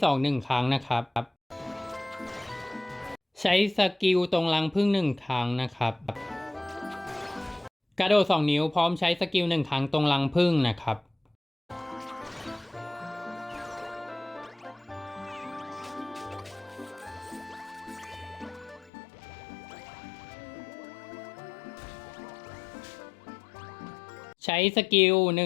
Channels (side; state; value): right; drops out; at 18.9 s